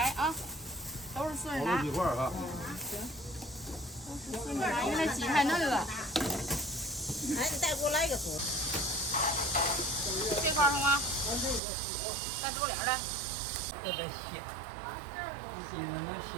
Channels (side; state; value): left; drops out; at 11.6 s